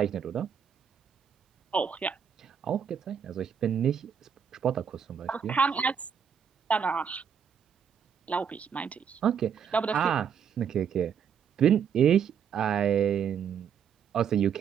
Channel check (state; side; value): quieter; left; 7.6 dB